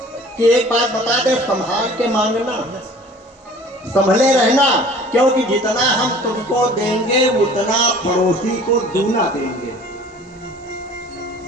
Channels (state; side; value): normal; both; correlation 0.48